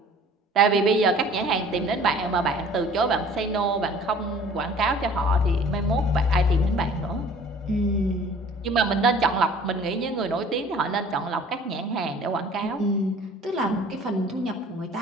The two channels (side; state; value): both; normal; correlation 0.49